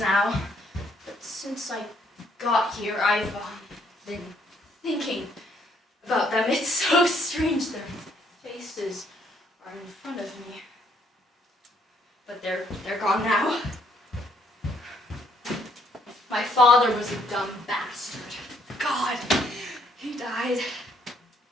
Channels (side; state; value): both; normal; correlation 0.68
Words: But since I got here, I've been thinking about them. It's so strange. Their faces are in front of me. But they're gone now. My father was a dumb bastard. God, he died.